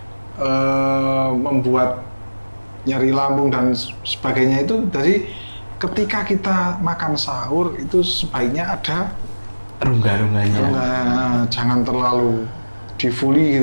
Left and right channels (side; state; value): both; inverted; correlation -1.00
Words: membuat nyeri lambung dan sebagainya. Itu dari ketika kita makan sahur itu sebaiknya ada rongga-rongganya. Jangan terlalu di-fully